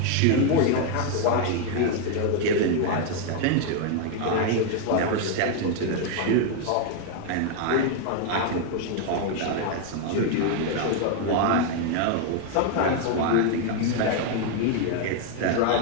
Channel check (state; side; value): different; both; correlation 0.01